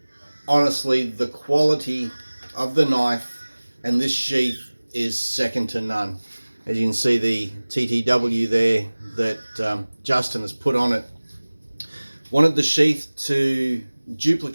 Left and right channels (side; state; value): both; inverted; correlation -1.00